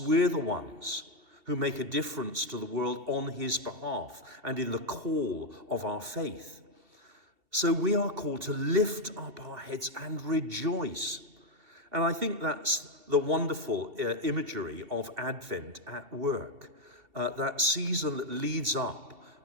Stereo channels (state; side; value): late; left; 2.7 ms